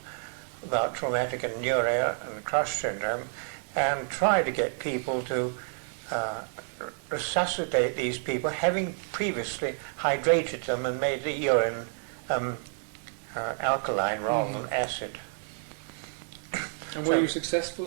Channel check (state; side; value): silent; left; digital silence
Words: about traumatic anuria and crush syndrome, and try to get people to resuscitate these people, having previously hydrated them and made the urine alkaline rather than acid. And were you successful